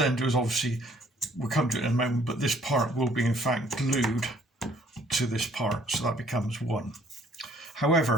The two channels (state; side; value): normal; both; correlation 0.61